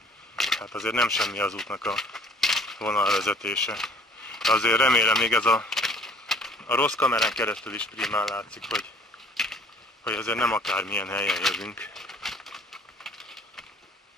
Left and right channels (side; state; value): both; normal; correlation 0.53